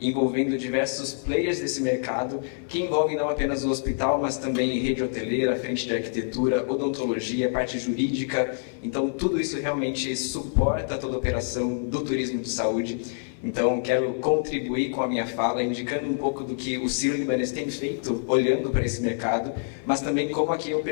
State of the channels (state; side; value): silent; right; 58 dB below the other